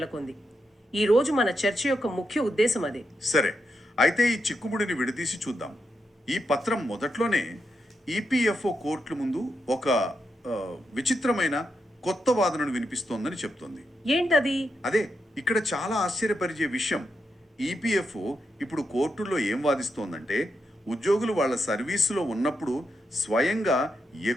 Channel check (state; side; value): normal; both; correlation 0.84